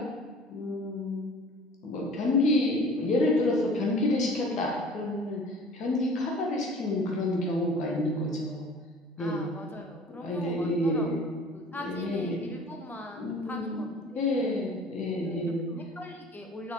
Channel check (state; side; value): normal; both; correlation 0.46